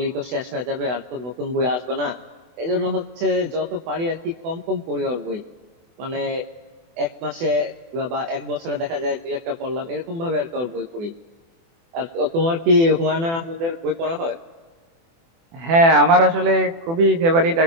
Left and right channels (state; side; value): late; left; 24 ms